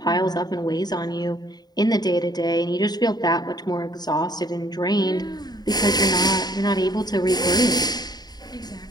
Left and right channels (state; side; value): late; right; 0.20 ms